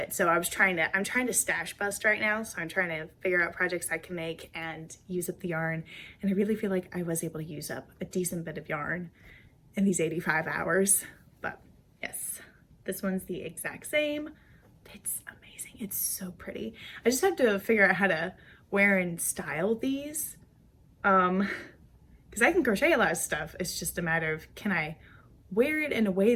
So I'm trying to stash bust right now. So I'm trying to figure out projects I can make and use up the yarn. And I really feel like I was able to use up a decent bit of yarn in these 85 hours. But yes, this one's the exact same. It's amazing. It's so pretty. I just have to figure out how to wear and style these. Because I can crochet a lot of stuff. It's just a matter of, can I wear it in a way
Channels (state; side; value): identical; both; correlation 1.00